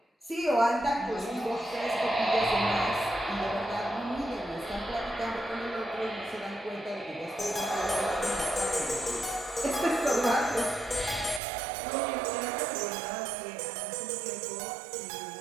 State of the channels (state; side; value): drops out; left; at 11.4 s